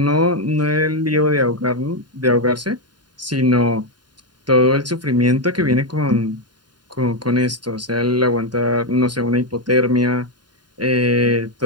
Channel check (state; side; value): late; left; 0.70 ms